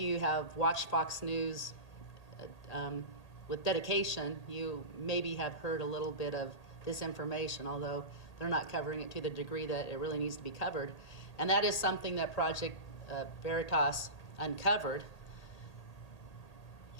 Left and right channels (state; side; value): late; right; 1.8 ms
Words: you have watched Fox News with dedication, you maybe have heard a little bit of this information, although they're not covering it to the degree that it really needs to be covered. And that is something that Project Veritas uncovered.